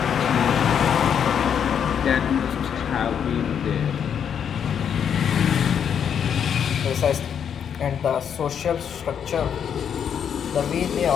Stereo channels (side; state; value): right; quieter; 8.1 dB